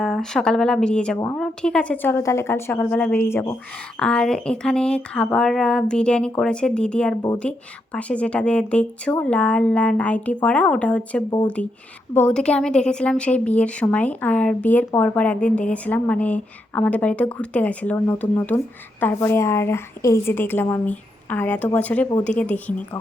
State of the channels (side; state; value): both; normal; correlation 0.81